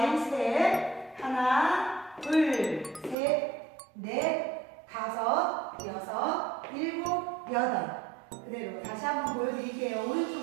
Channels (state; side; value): drops out; left; at 3.2 s